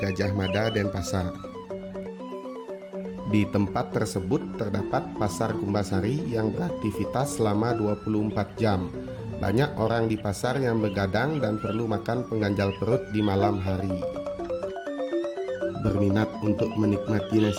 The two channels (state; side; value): identical; both; correlation 1.00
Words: Mada, Denpasar. Di tempat tersebut terdapat pasar Kumbasari yang beraktivitas selama 24 jam. Banyak orang di pasar yang begadang dan perlu makan pengganjal perut di malam hari. Berminat untuk menikmati